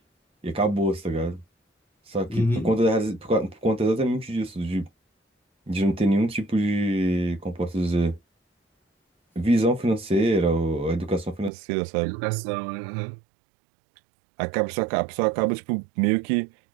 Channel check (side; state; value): left; drops out; at 11.5 s